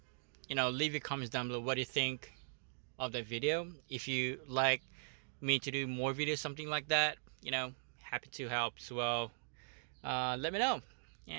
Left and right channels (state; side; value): silent; left; digital silence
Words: leave your comments down below. What do you think of that video? If you like me to do more videos, something like that, happy to help as well. Let me know,